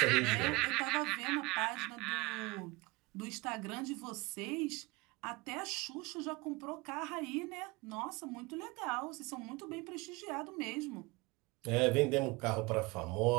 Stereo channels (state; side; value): quieter; left; 23.9 dB